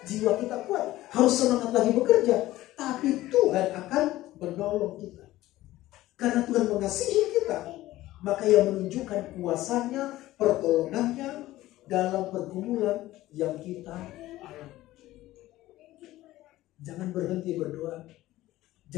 jiwa kita kuat, harus semangat lagi bekerja, tapi Tuhan akan menolong kita. Karena Tuhan mengasihi kita, maka Ia menunjukkan kuasanya, pertolongannya dalam pergumulan yang kita alami. Jangan berhenti berdoa,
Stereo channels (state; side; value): quieter; right; 16.1 dB